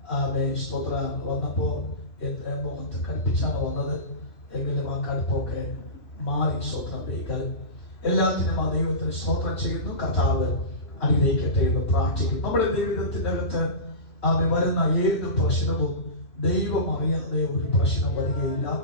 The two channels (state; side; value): late; right; 2.7 ms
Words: സ്തോത്ര വന്നപ്പോൾ മുഖത്ത് കടുപ്പിച്ചാണ് വന്നത്. എങ്കിലും ആ കടുപ്പൊക്കെ മാറി. സ്തോത്രം ദൈവം എല്ലാത്തിനും ആ ദൈവത്തിന് സ്തോത്രം ചെയ്യുന്നു. കർത്താവ് അനുഗ്രഹിക്കട്ടെ എന്ന് പ്രാർത്ഥിക്കുന്നു. നമ്മുടെ ജീവിതത്തിൻ്റെ അകത്ത് വരുന്ന ഏത് പ്രശ്നവും ദൈവം അറിയാതെ ഒരു പ്രശ്നം വരികയില്ല.